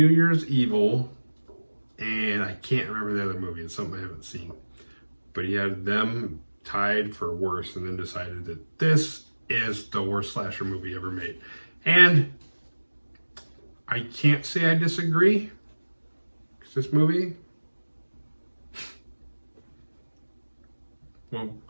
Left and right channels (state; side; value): inverted; both; correlation -1.00